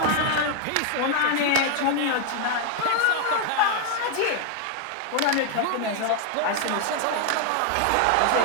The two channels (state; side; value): different; both; correlation 0.00